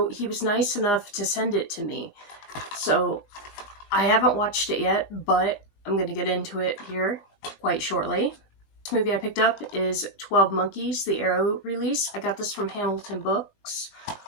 he was nice enough to send it to me. So I haven't watched it yet, but I'm going to get into it here quite shortly. This movie I picked up is 12 Monkeys, the Arrow release. I got this from Hamilton Books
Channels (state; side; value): late; right; 20 ms